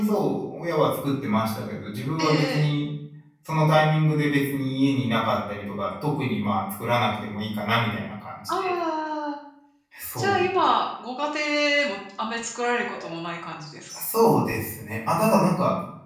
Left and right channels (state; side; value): identical; both; correlation 1.00